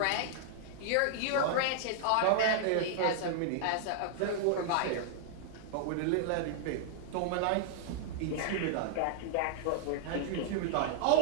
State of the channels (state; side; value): different; both; correlation -0.01